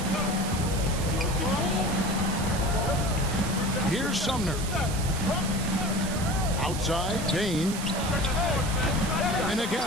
Here's Sumner. Outside, Bane. And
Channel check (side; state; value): right; noise; hiss, 8 dB below the sound